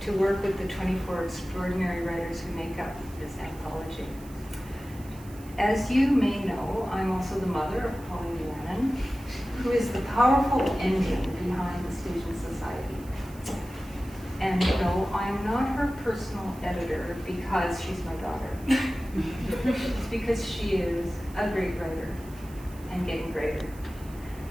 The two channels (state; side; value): noise; right; hiss, 22 dB below the sound